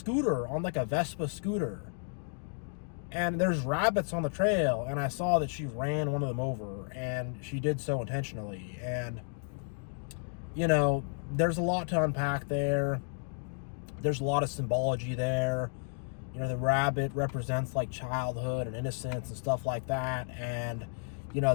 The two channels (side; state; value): right; silent; digital silence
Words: on like a Vespa scooter. And there's rabbits on the trail, and I saw that she ran one of them over, and she did so intentionally. And, there's a lot to unpack there. There's a lot of symbology there. The rabbit represents like childhood and innocence and stuff like that. And,